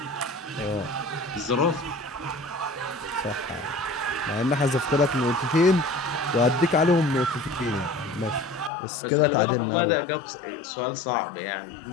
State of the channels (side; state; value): right; drops out; at 8.7 s